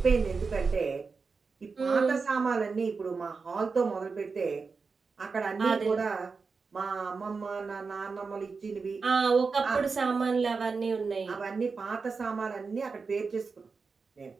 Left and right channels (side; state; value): left; quieter; 4.7 dB